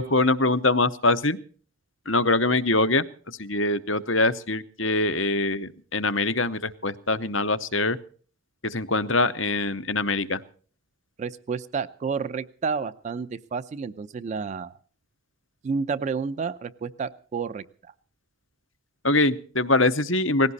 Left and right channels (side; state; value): both; normal; correlation -0.02